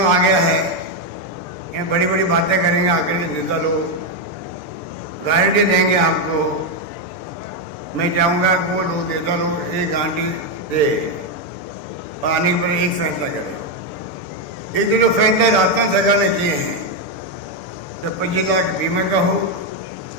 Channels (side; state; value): right; late; 6.8 ms